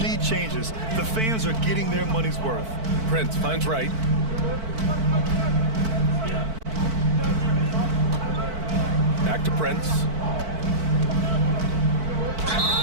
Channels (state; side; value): late; left; 4.5 ms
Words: changes. The fans are getting their money's worth. Prince finds right. Back to Prince.